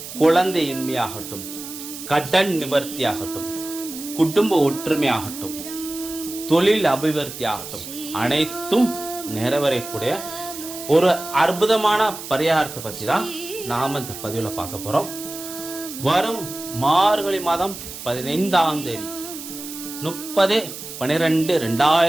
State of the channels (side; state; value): right; noise; hiss, 11 dB below the sound